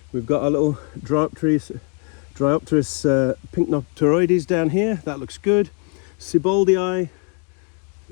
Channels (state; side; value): quieter; right; 37.2 dB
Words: We've got our little Dryopterus pycnopteroides down here. That looks good. Seboldii.